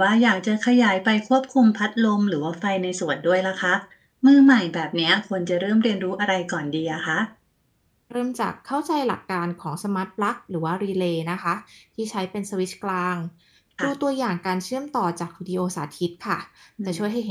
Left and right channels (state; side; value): identical; both; correlation 1.00